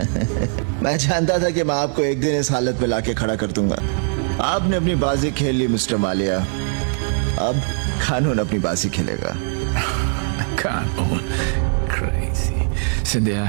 मैं जानता था कि मैं आपको एक दिन इस हालत में लाके खड़ा कर दूंगा। आपने अपनी बाजी खेल ली मिस्टर मालिया, अब कानून अपनी बाजी खेलेगा। कानून क्रेजी। सिंधिया,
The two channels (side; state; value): left; silent; 65 dB below the other